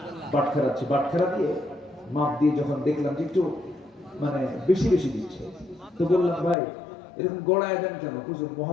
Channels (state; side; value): drops out; right; at 6.6 s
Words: বাটখারা দিয়ে মাপ দিয়ে যখন দেখলাম যে একটু মানে বেশি বেশি দিচ্ছে, তো বললাম ভাই এরকম গড়ায় দেন কেন? হুজুর